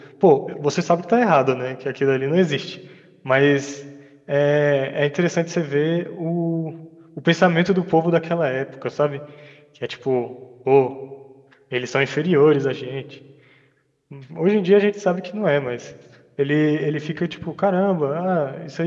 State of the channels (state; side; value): identical; both; correlation 1.00